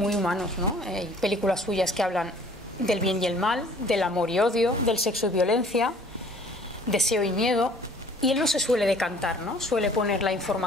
humanos, ¿no? Hay películas suyas que hablan del bien y el mal, del amor y odio, del sexo y violencia, deseo y miedo, y él no se suele decantar, ¿no? Suele poner la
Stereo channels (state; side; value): normal; both; correlation 0.53